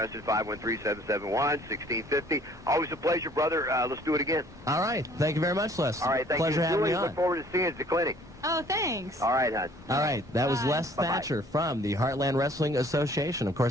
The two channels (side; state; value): both; normal; correlation 0.56